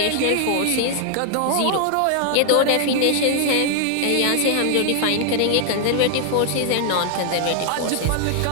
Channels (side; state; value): both; different; correlation 0.00